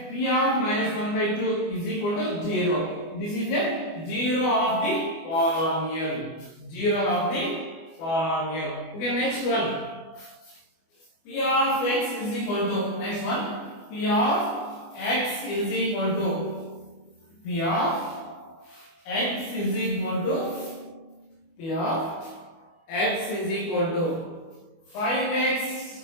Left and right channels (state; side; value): late; right; 24 ms